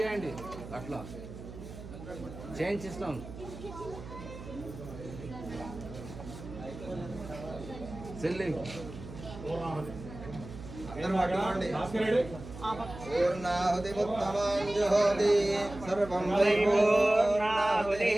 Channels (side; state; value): right; noise; hum, 13 dB below the sound